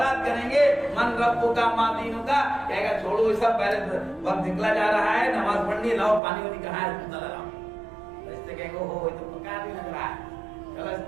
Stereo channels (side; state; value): left; drops out; at 6.2 s